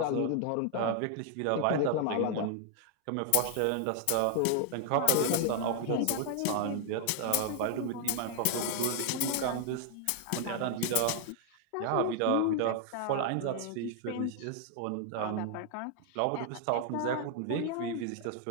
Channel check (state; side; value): different; both; correlation 0.00